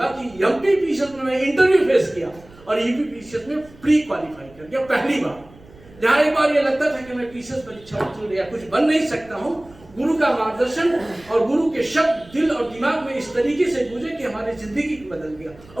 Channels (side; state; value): right; noise; rumble, 24 dB below the sound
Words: कि एमपी पीसीएस में मैं इंटरव्यू फेस किया और यूपी पीसीएस में प्री क्वालिफाई कर गया पहली बार। जहां एक बार ये लगता था कि मैं पीसीएस परीक्षा उत्तीर्ण या कुछ बन नहीं सकता हूं, गुरु का मार्गदर्शन और गुरु के शब्द दिल और दिमाग में इस तरीके से गूंजे कि हमारी जिंदगी बदल गया।